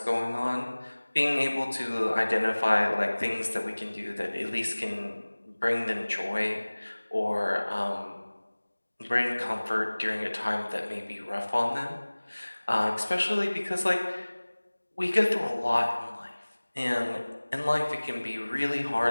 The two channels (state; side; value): inverted; both; correlation -1.00